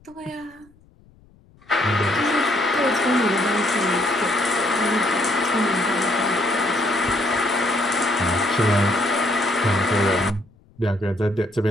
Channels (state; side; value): noise; left; rumble, 29 dB below the sound